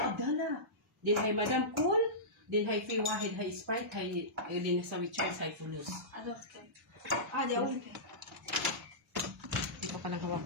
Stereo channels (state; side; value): normal; both; correlation -0.17